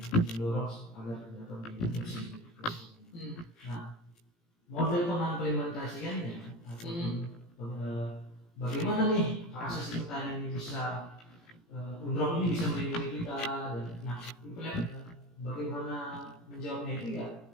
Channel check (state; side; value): late; right; 17 ms